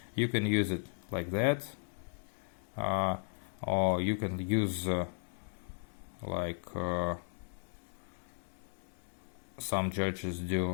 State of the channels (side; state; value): right; silent; digital silence